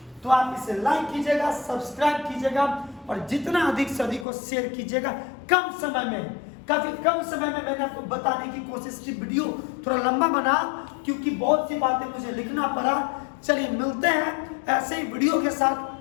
तो आप इसे लाइक कीजिएगा, सब्सक्राइब कीजिएगा, और जितना अधिक से अधिक को शेयर कीजिएगा। कम समय में, काफी कम समय में मैंने आपको बताने की कोशिश की। वीडियो थोड़ा लंबा बना क्योंकि बहुत सी बातें मुझे लिखना पड़ा। चलिए मिलते हैं ऐसे ही वीडियो के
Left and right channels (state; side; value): drops out; right; at 4.2 s